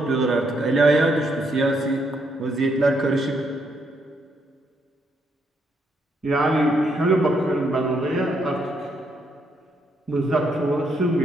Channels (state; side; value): normal; both; correlation 0.75